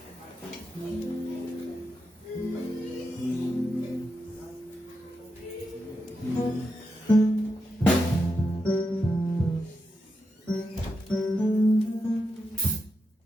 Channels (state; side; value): normal; both; correlation 0.86